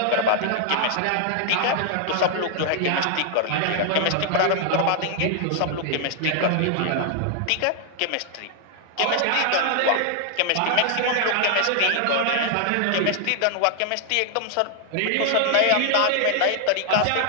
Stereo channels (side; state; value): both; different; correlation 0.00